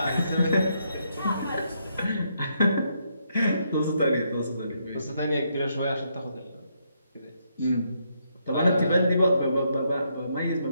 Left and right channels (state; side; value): inverted; both; correlation -0.76